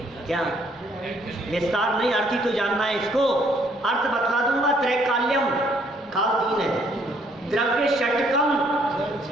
क्या विस्तार नहीं, अर्थ ही तो जानना है इसको। अर्थ बतला दूंगा। त्रैकाल्यम काल 3 है, द्रव्य षटकम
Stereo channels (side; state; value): both; normal; correlation 0.66